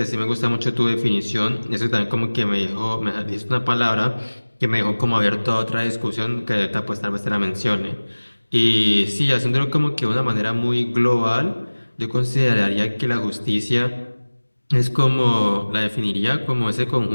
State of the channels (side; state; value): both; inverted; correlation -1.00